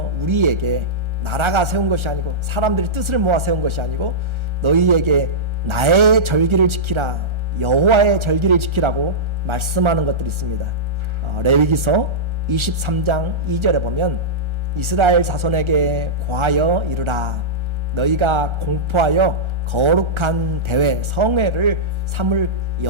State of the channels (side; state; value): left; late; 1.4 ms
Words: 우리에게 나라가 세운 것이 아니고 사람들이 뜻을 모아 세운 것이 아니고 너희에게 나의 절기를 지키라, 여호와의 절기를 지키라고 말씀하는 것들이 있습니다. 레위기서 23장 2절에 보면 이스라엘 자손에게 고하여 이르라, 너희가 공포하여 거룩한 대회 성회를 삼을